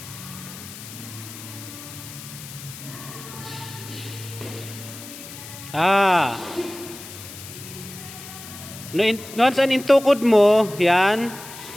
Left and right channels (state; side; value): noise; left; hiss, 14 dB below the sound